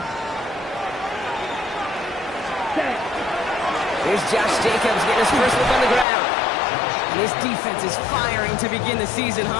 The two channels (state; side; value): drops out; right; at 6.1 s